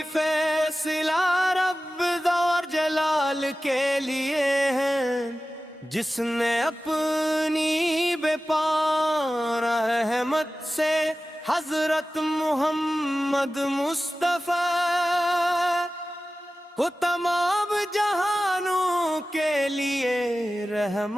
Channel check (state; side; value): normal; both; correlation 0.95